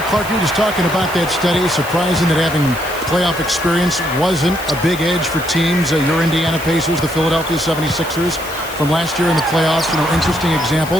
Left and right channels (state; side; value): noise; left; hiss, 14 dB below the sound